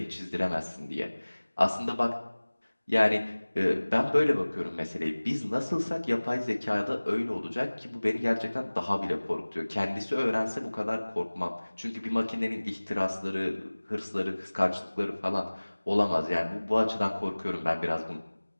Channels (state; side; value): inverted; both; correlation -1.00